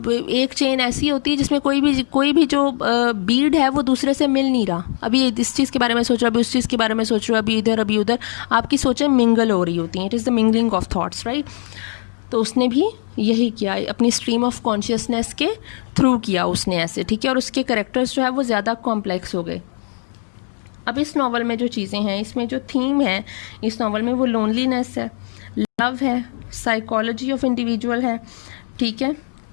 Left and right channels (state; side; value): silent; right; digital silence